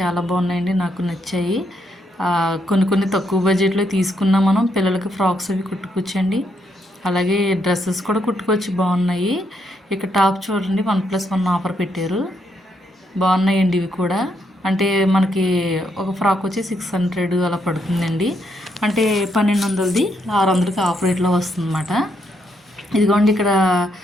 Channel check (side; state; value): both; normal; correlation 0.77